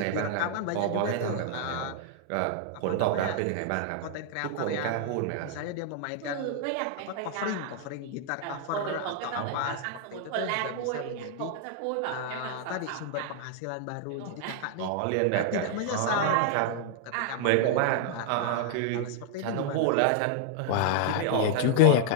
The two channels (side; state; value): both; different; correlation 0.00